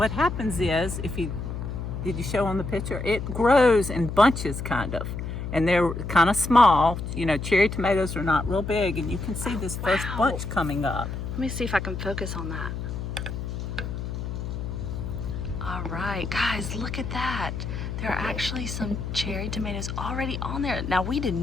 happens is, did you show on the picture? It grows in bunches, kind of. And they're kind of small. You know, cherry tomatoes are not real big, and you can see this first bunch coming up. Let me see if I can focus on that. All right, guys, look at that. There are actually some cherry tomatoes already on there. Now, we did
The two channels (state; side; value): noise; left; hum, 5 dB below the sound